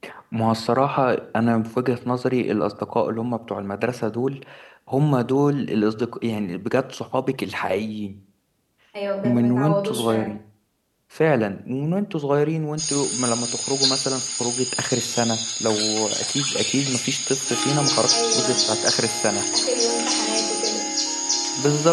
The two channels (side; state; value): both; identical; correlation 1.00